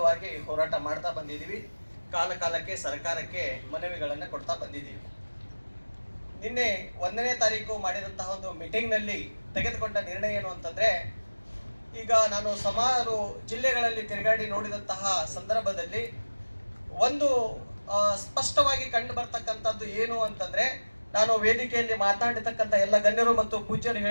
ಹೋರಾಟ ಮಾಡ್ತಾ ಬಂದಿದ್ದೀವಿ. ಕಾಲಕ್ಕೆ ಸರ್ಕಾರಕ್ಕೆ ಮನವಿಗಳನ್ನ ಕೊಡ್ತಾ ಬಂದಿದ್ದೀವಿ. ನಿನ್ನೆ 1ನೇ ತಾರೀಕು ಮಾಡಿದಂತಹ ಒಂದು ಮೀಟಿಂಗ್ ನಲ್ಲಿ ತೆಗೆದುಕೊಂಡ ನಿರ್ಣಯ ಏನು ಅಂತಂದ್ರೆ, ಈಗ ನಾನು ಸುಮಾರು ಜಿಲ್ಲೆಗಳಲ್ಲಿ ತಿರುಗಾಡಿ ನೋಡಿದಂತಹ ಸಂದರ್ಭದಲ್ಲಿ ಒಂದು ಸ್ಪಷ್ಟವಾಗಿ ಕಂಡು ಬರ್ತಕ್ಕಂಥದ್ದು ಏನು ಅಂತಂದ್ರೆ, ನಾನು ವೇದಿಕೆಯಲ್ಲಿ ಮಾತನಾಡಿರ್ತಕ್ಕಂಥ ಎಲ್ಲ ಗಣ್ಯರು ಮತ್ತು ಪೂಜ್ಯರು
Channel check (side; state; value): both; inverted; correlation -1.00